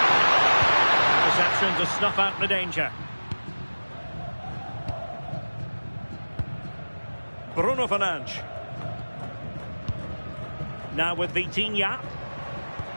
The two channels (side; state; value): both; inverted; correlation -1.00